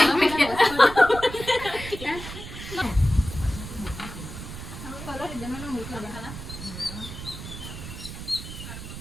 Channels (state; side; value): noise; right; rumble, 10 dB below the sound